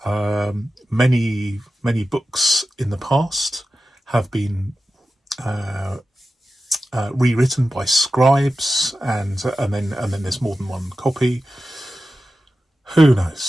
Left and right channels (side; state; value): both; normal; correlation 0.93